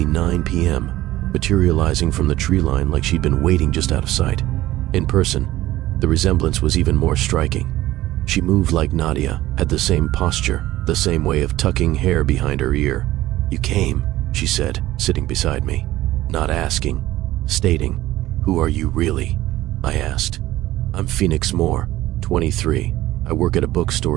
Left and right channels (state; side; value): quieter; left; 15.9 dB